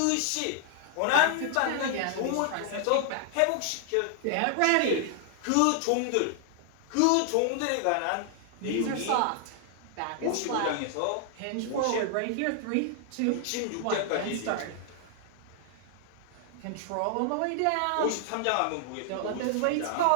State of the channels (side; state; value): both; different; correlation 0.00